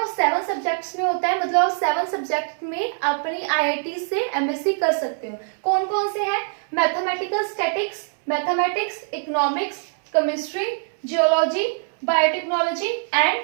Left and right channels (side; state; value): left; silent; 63 dB below the other